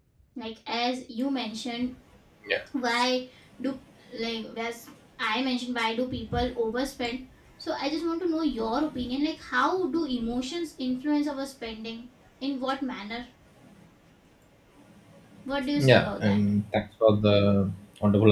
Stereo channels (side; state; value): both; identical; correlation 1.00